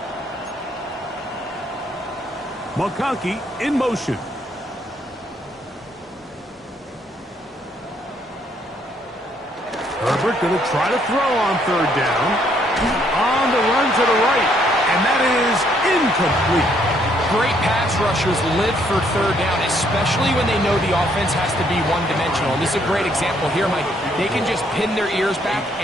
McConkey in motion. Herbert going to try to throw on 3rd down. On the run to the right, and that is incomplete. Great pass rushers live for 3rd down, especially when they know the offense has to be one-dimensional. And this is a great example here, Mike. They can just pin their ears back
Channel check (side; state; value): both; normal; correlation 0.69